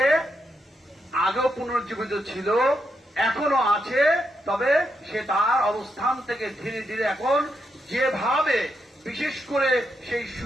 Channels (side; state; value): both; normal; correlation 0.82